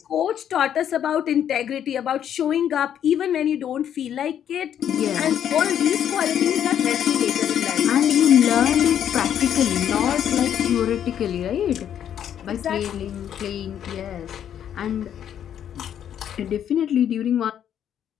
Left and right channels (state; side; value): quieter; right; 9.6 dB